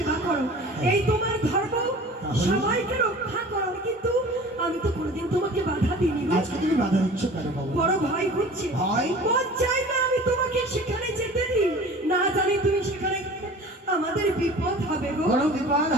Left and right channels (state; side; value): normal; both; correlation 0.42